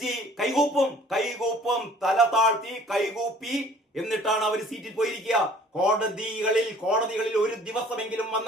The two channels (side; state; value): both; normal; correlation 0.53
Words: കൈകൂപ്പും, തല താഴ്ത്തി കൈകൂപ്പി എന്നിട്ടാണ് അവർ സീറ്റിൽ പോയിരിക്കുക. കോടതികളിൽ ഒരു ദിവസമെങ്കിലും